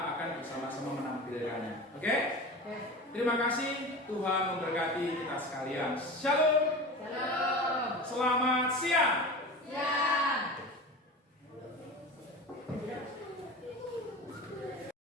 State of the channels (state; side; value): normal; both; correlation 0.32